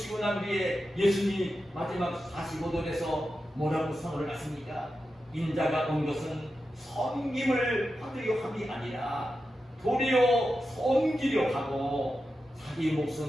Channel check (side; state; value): both; normal; correlation 0.90